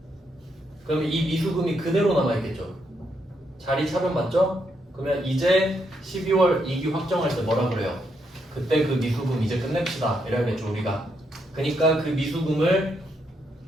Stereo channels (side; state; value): both; normal; correlation 0.78